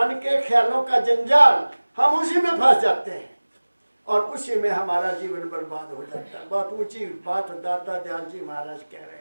के ख्यालों का जंजाल। हम उसी में फंस जाते हैं और उसी में हमारा जीवन बर्बाद हो जाता है। बहुत ऊंची बात दाता दयाल जी महाराज कह रहे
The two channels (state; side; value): inverted; both; correlation -1.00